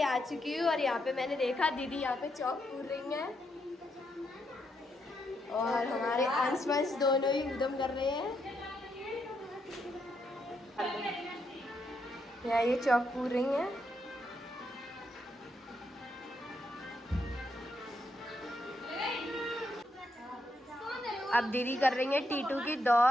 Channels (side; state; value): both; normal; correlation 0.79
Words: आ चुकी हूँ और यहाँ पे मैंने देखा दीदी यहाँ पे चौक पूर रही हैं और हमारे अंश वंश दोनों ही उद्यम कर रहे हैं। यहाँ ये चौक पूर रही हैं। अब दीदी कर रही है टीटू की